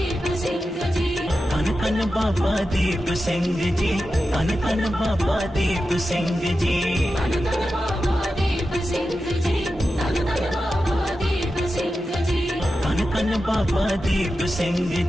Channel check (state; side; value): normal; both; correlation 0.91